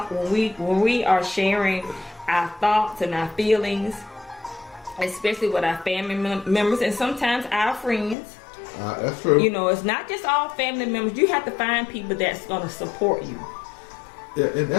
when we are sharing our thoughts and our feelings, especially with our family members and sometimes our friends. That's true. You know, it's not just all family members. You have to find people that's going to support you. Yeah, and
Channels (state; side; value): drops out; right; at 8.2 s